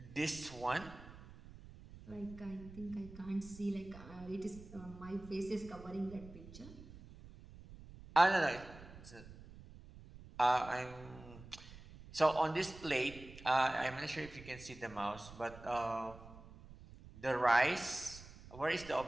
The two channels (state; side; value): noise; right; rumble, 17 dB below the sound